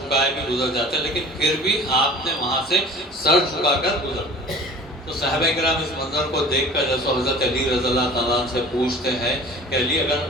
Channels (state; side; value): normal; both; correlation 0.44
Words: بھی گزر جاتے، لیکن پھر بھی آپ نے وہاں سے سر جھکا کر گزر تو صحابہ کرام اس منظر کو دیکھ کر جیسے حضرت علی رضی اللہ تعالیٰ عنہ سے پوچھتے ہیں کہ علی اگر